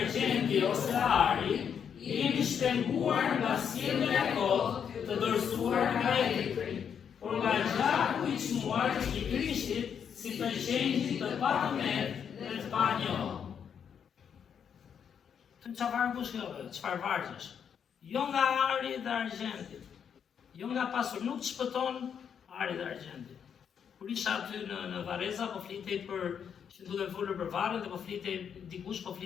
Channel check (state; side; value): quieter; right; 7.7 dB